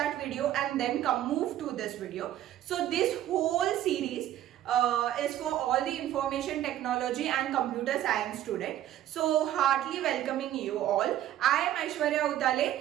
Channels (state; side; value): quieter; left; 12.5 dB